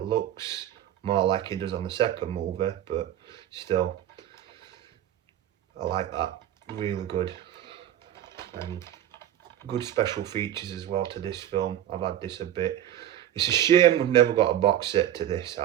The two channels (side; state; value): left; quieter; 11.6 dB